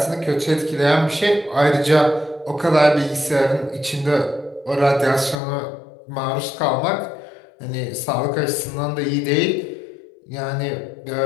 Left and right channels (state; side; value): drops out; right; at 5.4 s